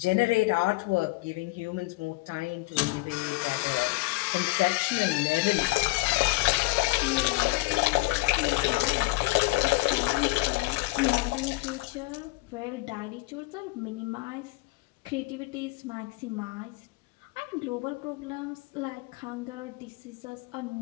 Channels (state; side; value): quieter; right; 23.6 dB